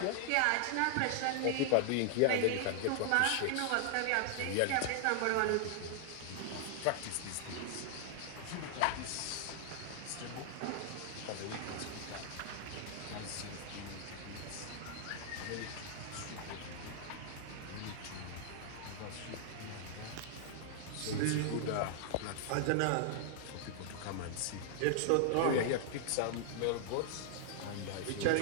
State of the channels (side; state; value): both; different; correlation -0.01